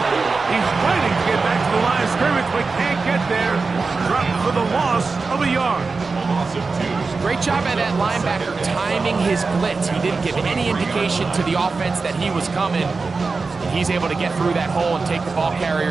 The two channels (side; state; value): left; quieter; 4.2 dB